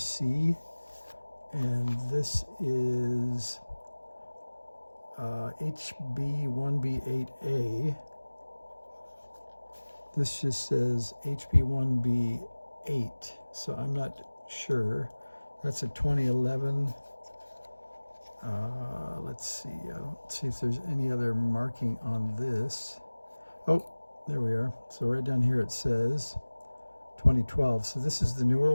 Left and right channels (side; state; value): both; inverted; correlation -1.00